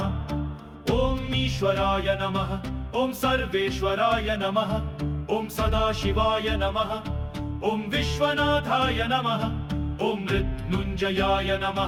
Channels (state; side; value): identical; both; correlation 1.00